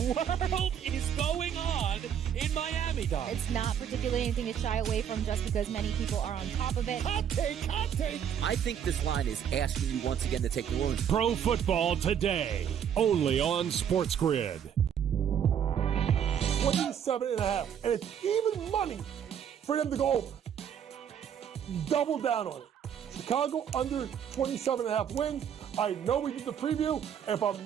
is going on in Miami, Don? It's not particularly anything to shy away from just because many people are on top of it. Hot take, hot take. I think this line is asking you once again to take the wounds. Pro Football Today, only on SportsGrid. 27.5, and it's even money for them to go over. Double down on it. Chicago under 27.5 wins. I know we did the preview. If I'm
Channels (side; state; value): left; quieter; 8.7 dB